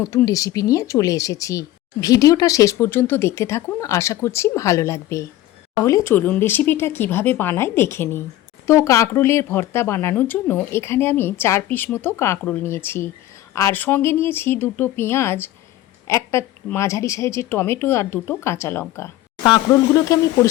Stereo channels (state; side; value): quieter; right; 14.7 dB